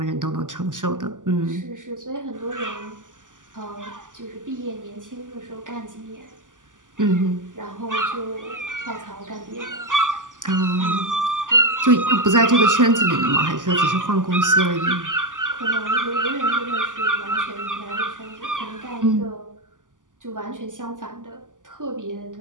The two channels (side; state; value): left; late; 0.88 ms